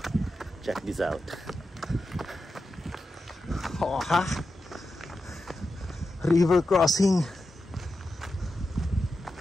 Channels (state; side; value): normal; both; correlation 0.89